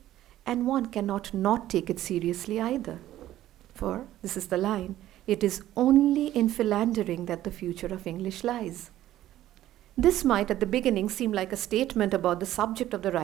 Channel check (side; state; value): left; quieter; 13.6 dB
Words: and one cannot not take it seriously either. For, this is the line, it is only in philandering that the future of English lies. This might at the beginning seem like a statement about the subject of the